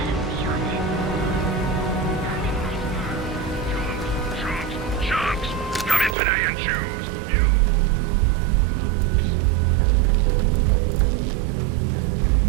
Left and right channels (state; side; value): drops out; left; at 6.2 s